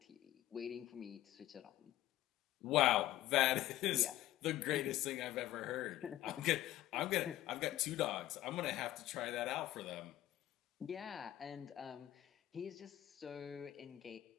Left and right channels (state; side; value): quieter; right; 14.5 dB